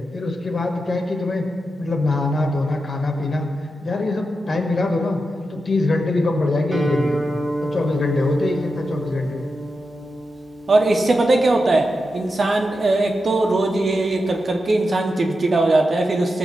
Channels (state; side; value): normal; both; correlation 0.89